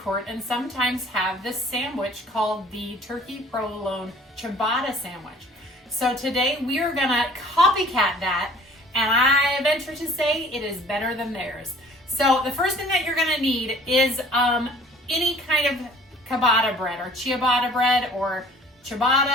court and sometimes have this sandwich called the Turkey Provolone ciabatta sandwich. So today we are gonna copycat that, and I venture to say it is better than theirs. So the first thing that you're gonna need is any kind of ciabatta bread or ciabatta bread or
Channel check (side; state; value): both; normal; correlation 0.50